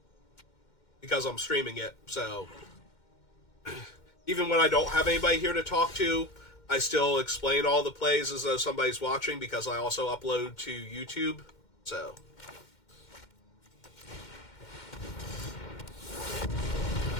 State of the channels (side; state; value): right; late; 2.1 ms